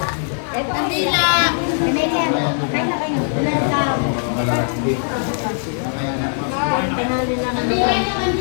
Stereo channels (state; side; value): silent; right; 62 dB below the other